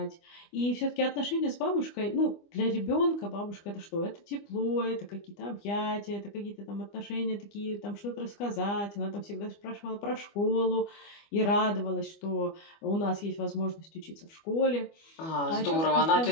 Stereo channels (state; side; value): late; right; 25 ms